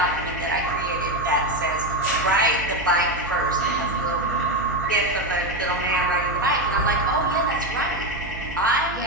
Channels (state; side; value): noise; right; hum, 12 dB below the sound